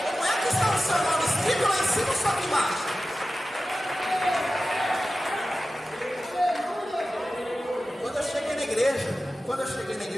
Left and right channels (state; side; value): normal; both; correlation 0.95